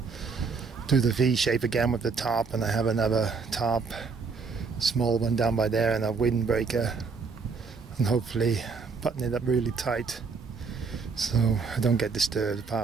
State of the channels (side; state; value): left; quieter; 4.9 dB